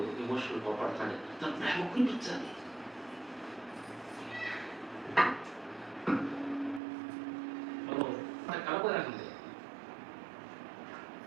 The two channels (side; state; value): left; drops out; at 6.8 s